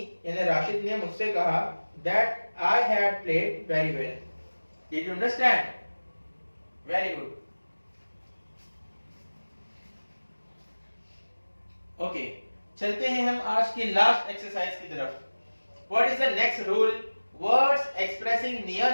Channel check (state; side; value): inverted; both; correlation -1.00